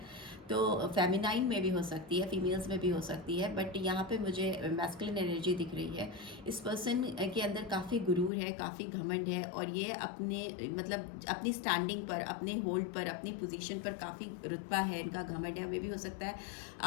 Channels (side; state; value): right; drops out; at 8.3 s